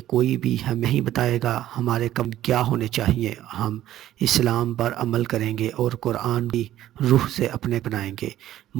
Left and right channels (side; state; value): left; quieter; 13.1 dB